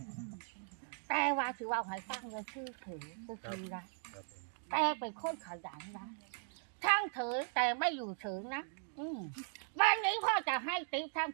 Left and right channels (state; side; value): silent; left; digital silence